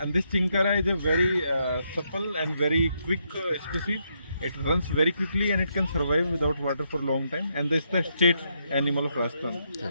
this chinkara is a very supple and very quick species. It runs very quickly and it can survive without water for a long time. And this is the state animal of Rajasthan.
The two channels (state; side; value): inverted; both; correlation -0.78